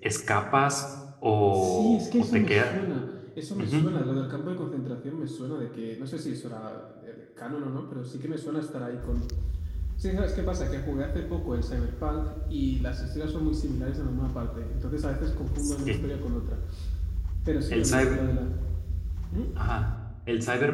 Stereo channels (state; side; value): identical; both; correlation 1.00